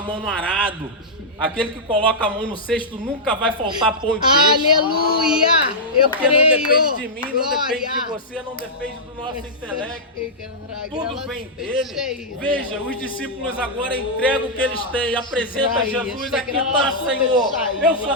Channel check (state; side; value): normal; both; correlation -0.09